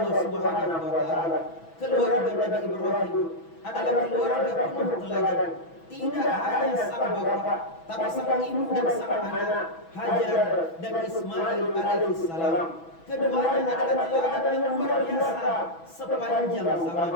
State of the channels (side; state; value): right; late; 6.1 ms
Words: Subhanahu wa taala, keluarga Nabi Ibrahim adalah keluarga penuh teladan. Tidak hanya sang bapak, tapi sang ibu dan sang anak, Hajar dan Ismail alaihissalam. Keduanya adalah teladan yang luar biasa sepanjang